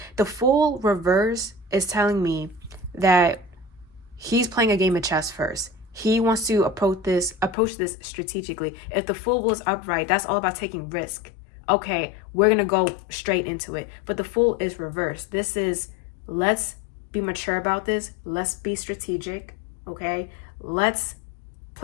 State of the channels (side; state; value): right; drops out; at 7.6 s